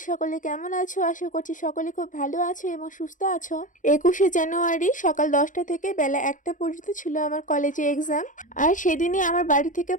সকলে কেমন আছো? আশা করছি সকলে খুব ভালো আছো এবং সুস্থ আছো। 21শে জানুয়ারি সকাল 10টা থেকে বেলা 1টা পর্যন্ত ছিল আমার কলেজে এক্সাম। আর সেদিনই আমার বাড়ি থেকে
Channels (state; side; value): late; right; 0.37 ms